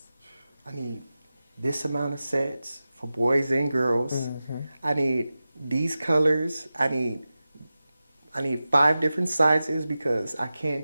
I need this amount of sets for boys and girls. I need these colors. I need 5 different sizes because I can't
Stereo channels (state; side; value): inverted; both; correlation -0.94